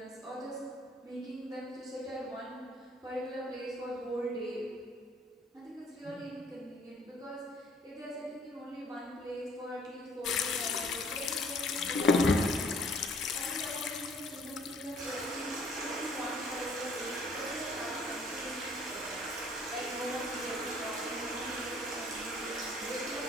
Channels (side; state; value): both; normal; correlation 0.59